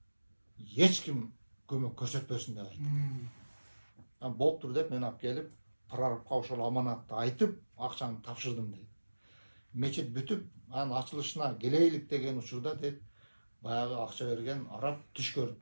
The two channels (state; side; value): inverted; both; correlation -1.00